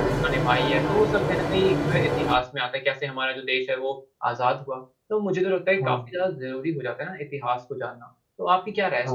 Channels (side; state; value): both; identical; correlation 1.00